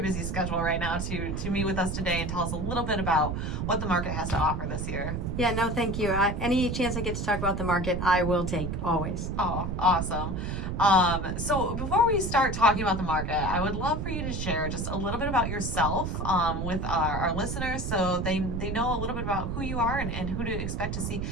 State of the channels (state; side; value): noise; right; rumble, 3 dB below the sound